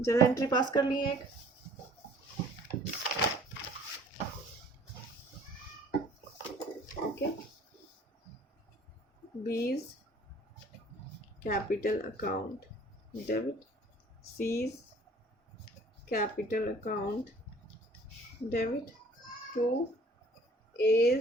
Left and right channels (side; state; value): both; normal; correlation 0.53